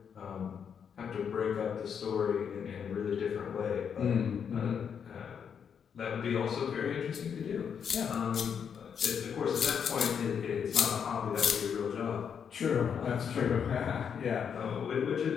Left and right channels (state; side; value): quieter; right; 7.4 dB